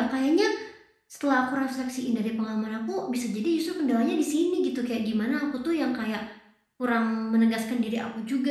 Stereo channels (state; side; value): identical; both; correlation 1.00